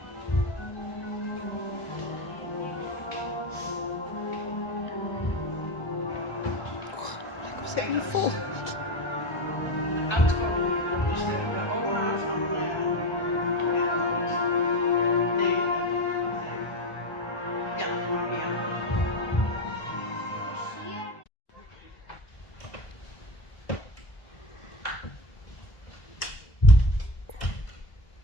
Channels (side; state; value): right; late; 1.9 ms